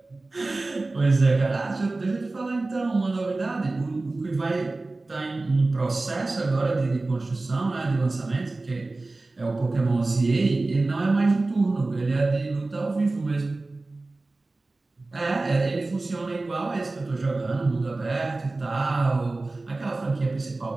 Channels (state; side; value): quieter; left; 3.2 dB